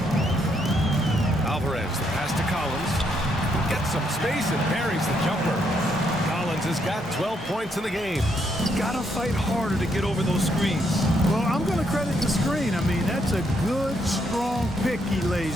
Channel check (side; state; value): both; normal; correlation 0.75